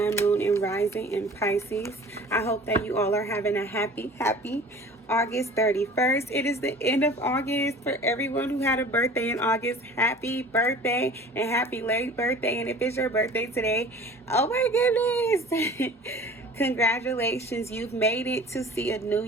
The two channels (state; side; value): normal; both; correlation 0.44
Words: moon, and rising in Pisces. I hope that you all are having a happy August 31st. It is the end of August. For everyone who had a birthday in August, happy birthday and happy late birthday. And if it's your birthday today, oh my goodness. Congratulations, you've made it to see a new